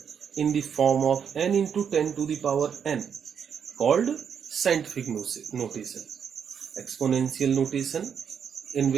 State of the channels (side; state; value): left; quieter; 7.5 dB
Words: in the form of n into 10 to the power n called scientific notation. Exponential notation in